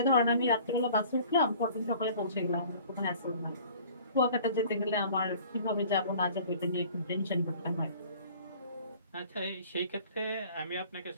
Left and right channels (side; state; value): both; inverted; correlation -0.50